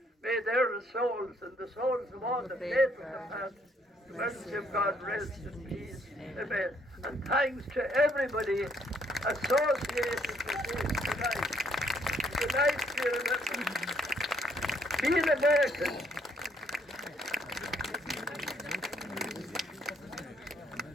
May their souls and the souls of all the faithful departed, the mercy of God rest in peace. Amen. And thanks to everybody associated with this tonight. Tonight, dear members, be an American.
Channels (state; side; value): normal; both; correlation 0.68